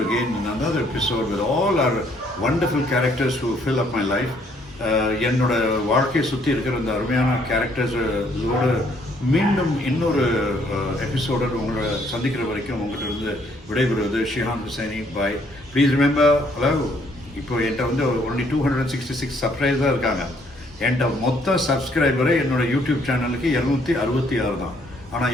again in another episode with all our wonderful characters who fill up my life. என்னோட வாழ்க்கையை சுற்றி இருக்கிற அந்த அருமையான கேரக்டர்ஸோட மீண்டும் இன்னொரு எபிசோட உங்களை சந்திக்கிற வரைக்கும் உங்கள்கிட்ட இருந்து விடைபெறுவது ஷிஹான் ஹுசைனி. பாய். ப்ளீஸ் ரிமெம்பர், ஹலோ, இப்போ என்கிட்ட வந்து ஒன்லி 266 சப்ஸ்கிரைபர் தான் இருக்காங்க. என்கிட்ட மொத்த சப்ஸ்கிரைபரே என்னோட யூடியூப் சேனலுக்கு 266 தான். ஆனால்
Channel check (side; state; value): both; normal; correlation 0.66